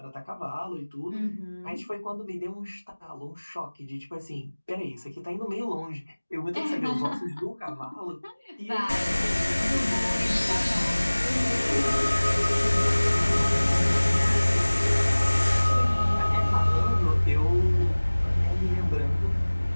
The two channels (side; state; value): both; inverted; correlation -1.00